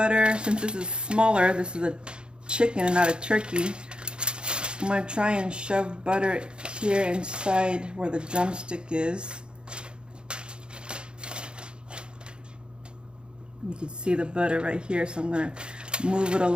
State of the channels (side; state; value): left; late; 0.052 ms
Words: since this is smaller, this is a chicken and not a turkey, I'm going to try and shove butter here inside where the drumstick is. You can see the butter right here, so I'm going to move it